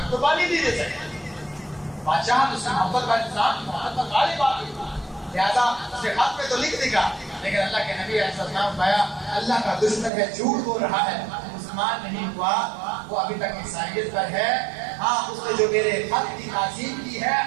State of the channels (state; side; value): drops out; left; at 10.1 s